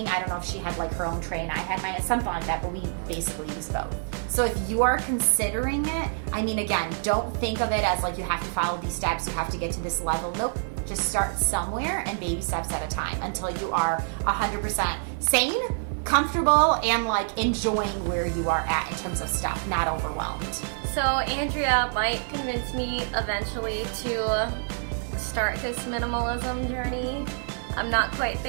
I don't know if she had like her own tray and I had mine, something like that, but we basically used both. So if you are considering it, I mean, again, don't think of it as like you have to follow these steps, you have to get to this level. Nope. Just start somewhere and baby steps at a time until you are 100% sane, comfortable, and like enjoying where you are at in terms of stuff, not overwhelmed. So Andrea might convince me eventually to start this minimalism journey. I'm not quite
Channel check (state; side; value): silent; left; digital silence